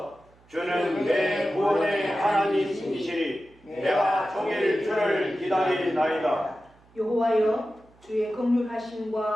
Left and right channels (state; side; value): noise; right; hum, 30 dB below the sound